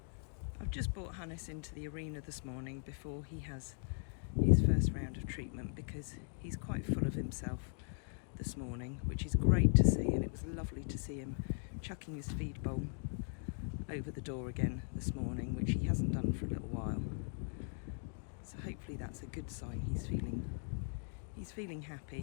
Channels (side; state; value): right; silent; 52 dB below the other